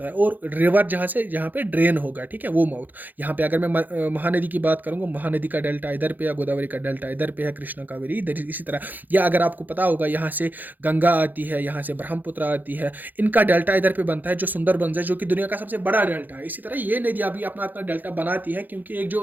है, और रिवर जहाँ पे ड्रेन होगा, ठीक है, वो माउथ। यहाँ पे अगर मैं महानदी की बात करूंगा, महानदी का डेल्टा इधर पे है, गोदावरी का डेल्टा इधर पे है, कृष्णा, कावेरी इधर, इसी तरह। या अगर आपको पता होगा, यहाँ से गंगा आती है, यहाँ से ब्रह्मपुत्र आती है, इनका डेल्टा इधर पे बनता है, जो सुंदरबंस है, जो कि दुनिया का सबसे बड़ा डेल्टा है। इसी तरह ये नदियां भी अपना अपना डेल्टा बनाती है, क्योंकि एक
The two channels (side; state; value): left; late; 0.085 ms